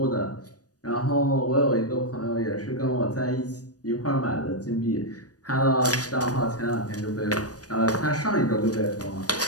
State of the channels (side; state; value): right; late; 0.68 ms